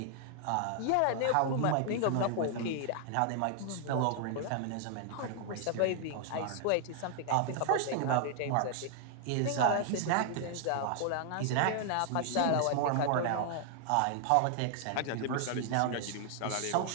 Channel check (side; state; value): both; different; correlation 0.00